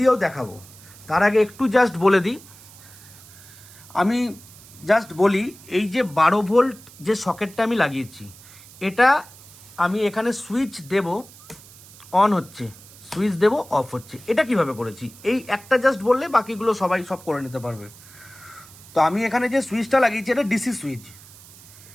দেখাবো। তার আগে একটু জাস্ট বলে দিই, এই যে 12 ভোল্ট যে সকেটটা আমি লাগিয়েছি, এটা আমি এখানে সুইচ দেব, অন হচ্ছে, সুইচ দেব, অফ হচ্ছে। এটা কিভাবে করেছি এই একটা জাস্ট বললে বাকিগুলো সবাই সব করে নিতে পারবে। তো আমি এখানে যে সুইচটা লাগিয়েছি এটা ডিসি সুইচ।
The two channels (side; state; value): right; noise; hiss, 21 dB below the sound